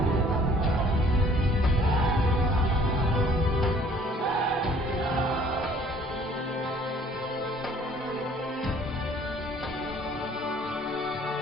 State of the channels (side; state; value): both; normal; correlation 0.56